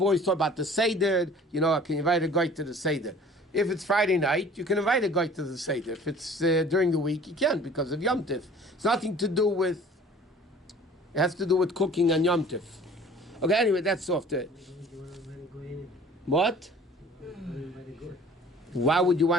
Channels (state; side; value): normal; both; correlation 0.49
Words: always talk about the Seder, I can invite a guy to the Seder. If it's Friday night, you can invite a guy to the Seder. If it's during the week, you can't because of Yom Tov. It's nothing to do with, it has to do with cooking on Yom Tov. Okay, anyway, that's off the... What? Why would you